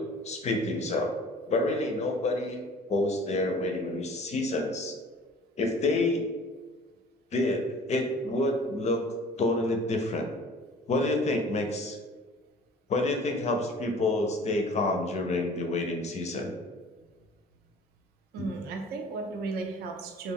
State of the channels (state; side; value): normal; both; correlation 0.48